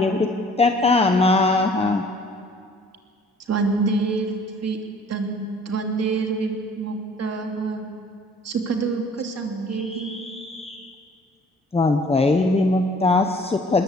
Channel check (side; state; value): both; normal; correlation 0.53